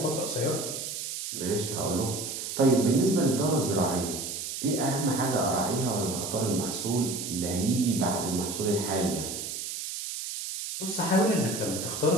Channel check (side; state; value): right; noise; hiss, 6 dB below the sound